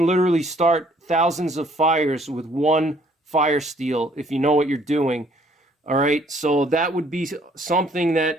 literally start thousands of fires with one fire steel if you know what you're doing. All right, so that would be something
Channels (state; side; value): normal; both; correlation 0.62